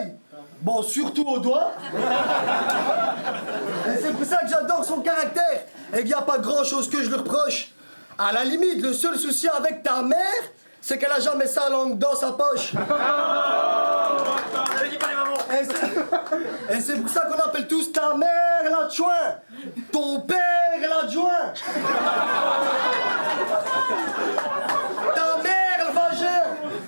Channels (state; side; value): inverted; both; correlation -1.00